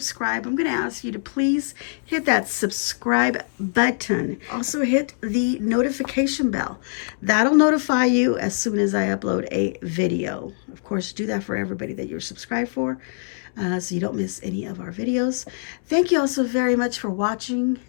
I'm going to ask you to please hit that subscribe button. Also hit the notification bell. That'll notify you as soon as I upload a video. Of course, do that for everybody that you're subscribed for, so you don't miss any of our videos. Thank you all so very much for watching,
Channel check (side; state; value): right; silent; digital silence